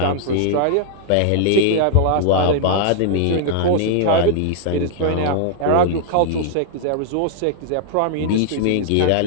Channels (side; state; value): both; different; correlation -0.01